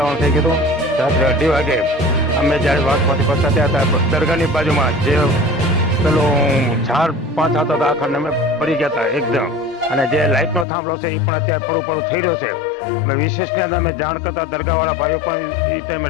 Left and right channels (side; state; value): right; drops out; at 10.7 s